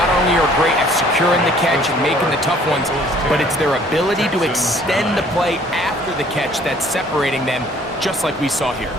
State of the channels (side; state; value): both; normal; correlation 0.57